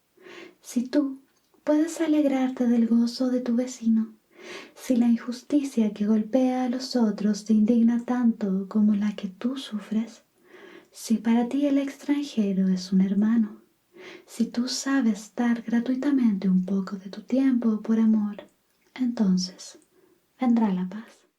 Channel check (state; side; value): identical; both; correlation 1.00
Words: Si tú puedes alegrarte del gozo de tu vecino, si la injusticia que golpea a los otros te indigna tanto como la que tú sufres, si para ti el extranjero es un hermano, si tú sabes dar gratuitamente un poco de tu tiempo por amor, entonces vendrá la paz.